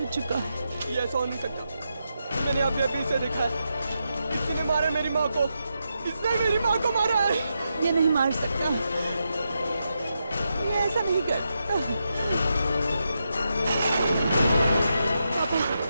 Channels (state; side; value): inverted; both; correlation -0.85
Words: चुका है। ये ऐसा हो नहीं सकता। मैंने अभी अभी इसे देखा है। किसी ने मारा मेरी माँ को। इसने मेरी माँ को मारा है। ये नहीं मार सकता, ये ऐसा नहीं कर सकता।